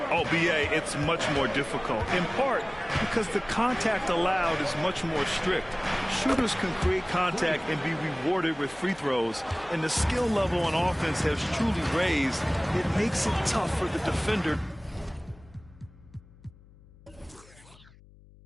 Oh, BA, it's much more difficult. In part because the contact allowed is much more strict. Shooters can create contact and be rewarded with free throws. And the skill level on offense has truly raised. It makes it tough for the defender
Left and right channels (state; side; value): noise; left; hum, 24 dB below the sound